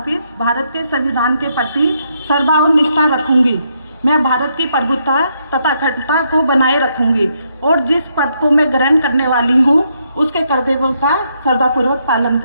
भारत के संविधान के प्रति श्रद्धा और निष्ठा रखूंगी। मैं भारत की प्रभुता तथा अखंडता को बनाए रखूंगी और जिस पद को मैं ग्रहण करने वाली हूँ उसके कर्तव्यों का श्रद्धापूर्वक पालन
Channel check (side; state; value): both; inverted; correlation -0.76